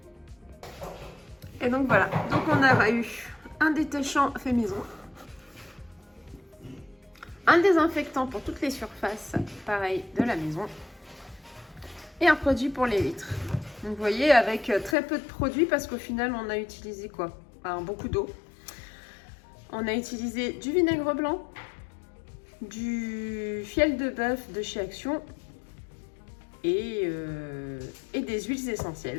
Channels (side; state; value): right; drops out; at 15.0 s